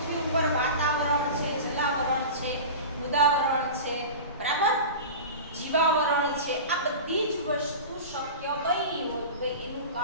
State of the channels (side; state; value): both; inverted; correlation -0.31